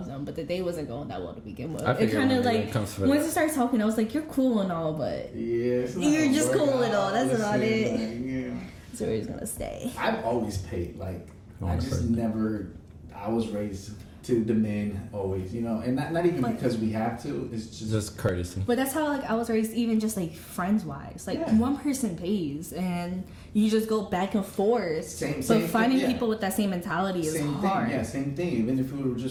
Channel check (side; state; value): both; identical; correlation 1.00